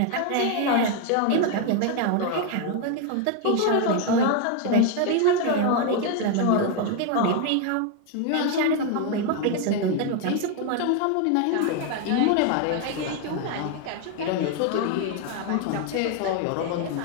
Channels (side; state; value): both; different; correlation 0.01